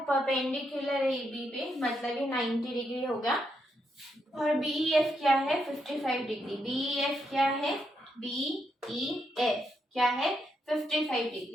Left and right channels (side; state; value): both; normal; correlation 0.80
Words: परपेंडिकुलर है AB पे, मतलब ये 90 डिग्री होगा। और BEF क्या है, 55 डिग्री। BEF क्या है, BEF क्या है, 55